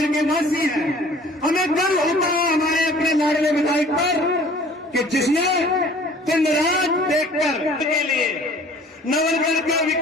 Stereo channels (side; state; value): both; normal; correlation 0.50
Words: के वासी हैं। हमें गर्व होता है हमारे अपने लाडले विधायक पर कि जिसने दिन रात देखकर के लिए, नवलगढ़ के